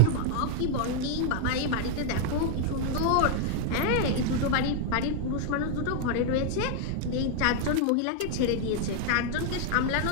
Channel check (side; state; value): both; different; correlation 0.00